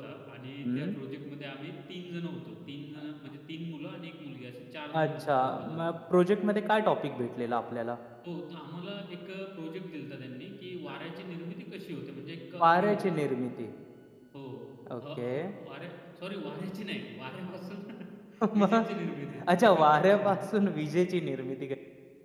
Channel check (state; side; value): identical; both; correlation 1.00